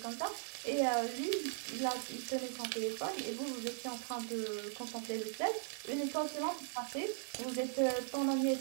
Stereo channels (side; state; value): left; silent; 52 dB below the other